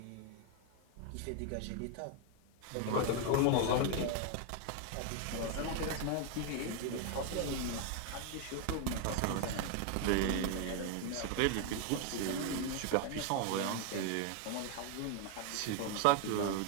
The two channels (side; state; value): both; different; correlation 0.01